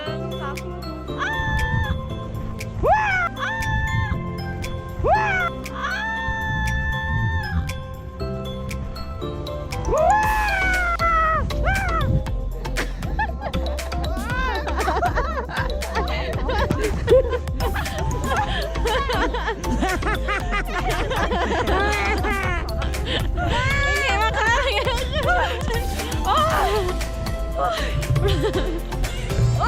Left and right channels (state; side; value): identical; both; correlation 1.00